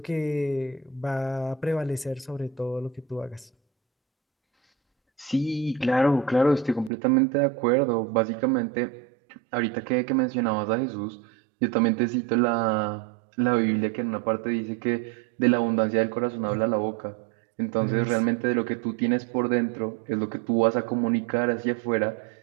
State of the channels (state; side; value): drops out; left; at 6.9 s